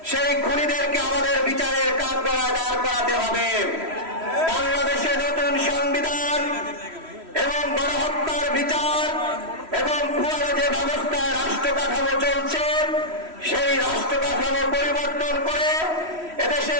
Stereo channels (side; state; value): left; late; 3.1 ms